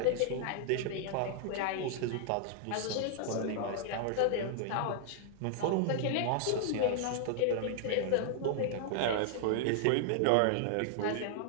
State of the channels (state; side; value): different; both; correlation -0.01